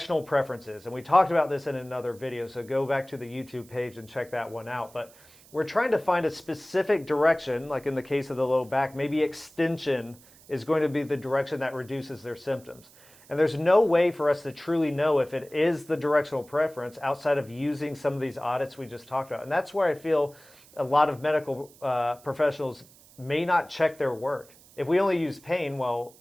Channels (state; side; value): noise; right; hiss, 25 dB below the sound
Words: preference is. And we talked about this in another video, so go back to the YouTube page and check that one out. But we're trying to find a specific direction, like in the case of the low back, maybe extension is going to be the direction that reduces their symptoms. And there's no way for us to truly know if it is the directional preference outside of using some of these audits we just talked about. And that's where I feel a lot of medical professionals may not check their work. If we only use pain, well,